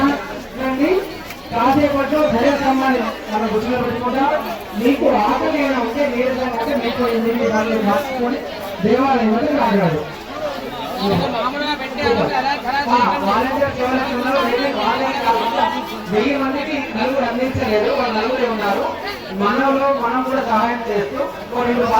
కాసేపట్లో ధ్వజస్తంభాన్ని మన గుర్తులో పెట్టుకుంటాం. మీకు ఆకలి ఏమైనా ఉంటే నీరసంగా ఉంటే మీకు 8 సార్లు రాసుకొని దేవాలయం వద్ద రాగాడు. వాలంటీర్స్ ఎవరైతే ఉన్నారో 1000 మందికి నలుగురు అందించలేదు. వాళ్ళు నలుగురే ఉన్నారు. మనలో మనం కూడా సహాయం చేస్తూ 2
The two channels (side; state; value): both; identical; correlation 1.00